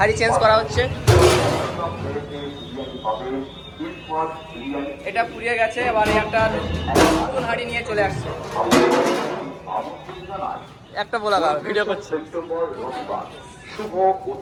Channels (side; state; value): both; identical; correlation 1.00